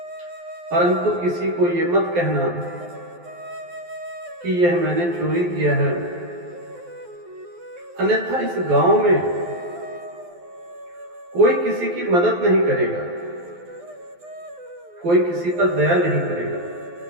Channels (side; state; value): left; late; 12 ms